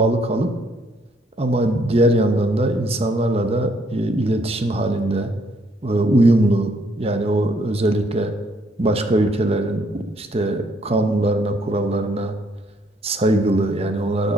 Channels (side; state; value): both; normal; correlation 0.68